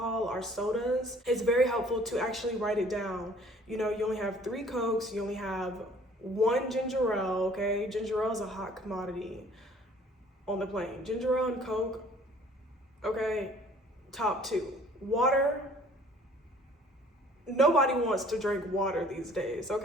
or sodas. It's very helpful to actually write it down. You know, you only have 3 Cokes, you only have 1 ginger ale, okay? Ginger ale is a hot commodity on the plane. Ginger ale and Coke, okay, top 2. Water, nobody wants to drink water these days,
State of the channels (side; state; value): both; normal; correlation 0.54